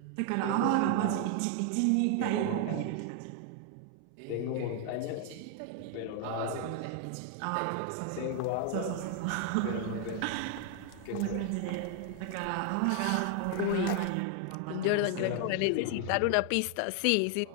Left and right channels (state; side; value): different; both; correlation 0.00